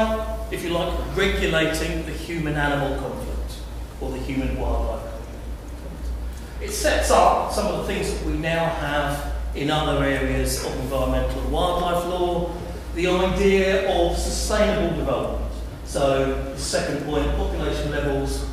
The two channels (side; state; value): both; identical; correlation 1.00